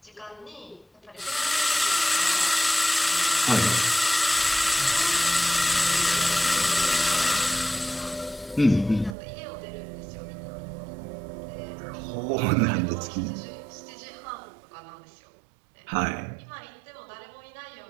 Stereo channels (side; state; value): left; drops out; at 9.2 s